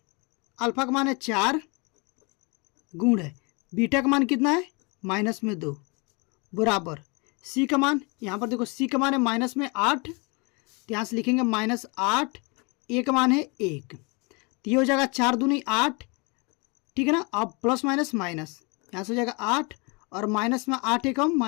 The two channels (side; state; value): right; quieter; 30.3 dB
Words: अल्फा का मान है 4 गुण है बीटा का मान कितना है माइनस में 2 बराबर सी का मान, यहाँ पर देखो सी का मान है माइनस में 8, तो यहाँ से लिखेंगे -8, ए का मान है 1, तो ये हो जाएगा 4 दूनी 8, ठीक है ना। अब प्लस माइनस माइनस यहाँ से हो जाएगा 8 और माइनस में 8 एकम